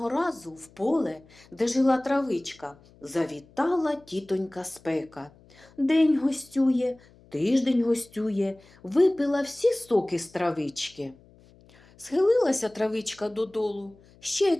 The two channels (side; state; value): left; noise; hum, 27 dB below the sound